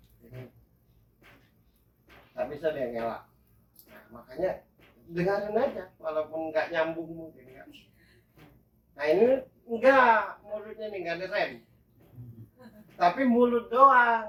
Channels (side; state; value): both; identical; correlation 1.00